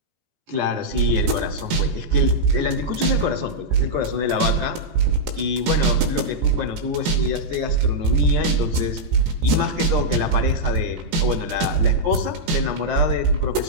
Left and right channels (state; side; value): late; left; 16 ms